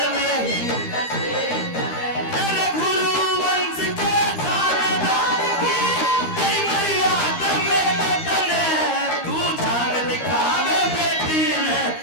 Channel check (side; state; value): right; late; 13 ms